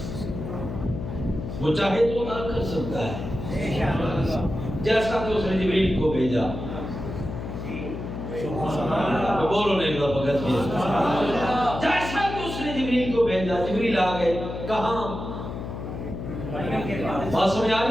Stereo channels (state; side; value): noise; left; hum, 7 dB below the sound